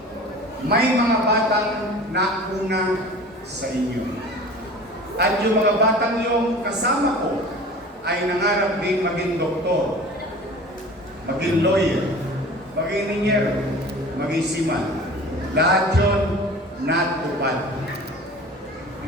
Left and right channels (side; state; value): both; normal; correlation 0.40